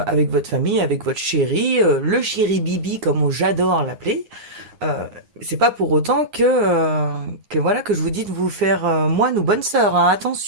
votre famille, avec votre chéri, le chéri Bibi, comme j'adore l'appeler. Euh, c'est pas pour autant que voilà que je vous dis de vous faire moine ou bonne sœur, hein.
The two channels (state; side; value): late; left; 9.7 ms